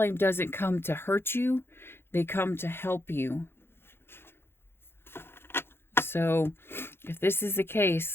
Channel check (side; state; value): right; late; 0.11 ms